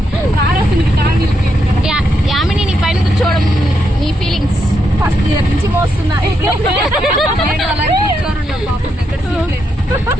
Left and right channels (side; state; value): both; normal; correlation 0.81